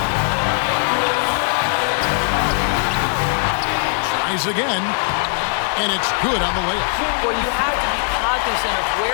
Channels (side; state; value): right; silent; 56 dB below the other